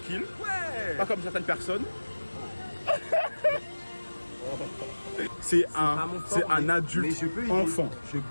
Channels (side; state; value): both; inverted; correlation -1.00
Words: Ouais. Pas comme certaines personnes. C'est pas mon fort, un mais adulte je peux aider. enfant. Je